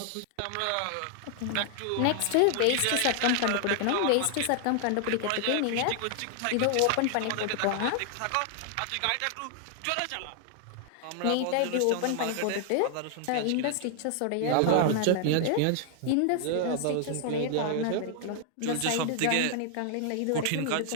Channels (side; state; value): both; different; correlation 0.00